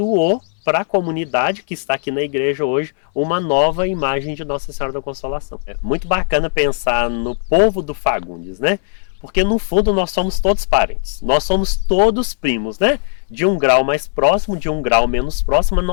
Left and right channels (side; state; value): right; silent; digital silence